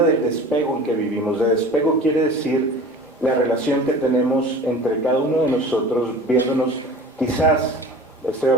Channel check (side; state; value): both; normal; correlation 0.40